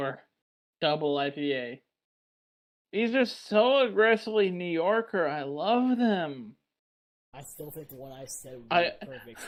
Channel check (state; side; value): identical; both; correlation 1.00